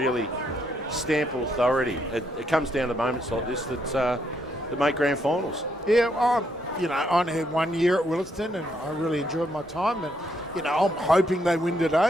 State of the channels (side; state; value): both; normal; correlation 0.75